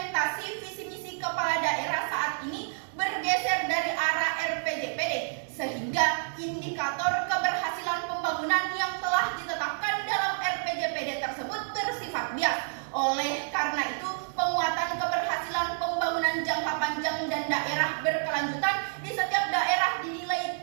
visi misi kepala daerah saat ini bergeser dari arah RPJPD, sehingga indikator keberhasilan pembangunan yang telah ditetapkan dalam RPJPD tersebut bersifat bias. Oleh karena itu, penguatan keberhasilan pembangunan jangka panjang dan daerah berkelanjutan di setiap daerah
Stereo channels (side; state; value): left; silent; digital silence